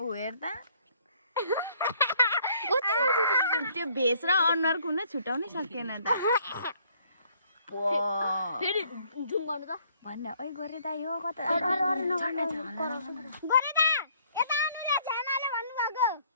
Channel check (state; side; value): inverted; both; correlation -0.62